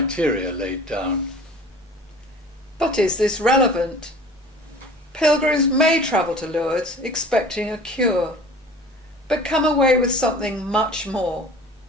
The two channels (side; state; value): both; normal; correlation 0.44